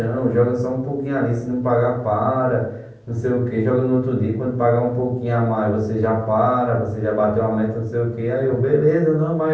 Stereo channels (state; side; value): identical; both; correlation 1.00